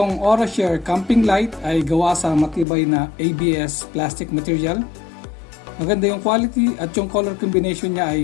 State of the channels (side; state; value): right; drops out; at 2.7 s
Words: OraShare Camping Light ay gawa sa matibay na ABS plastic material. Maganda yung quality at yung color combination niya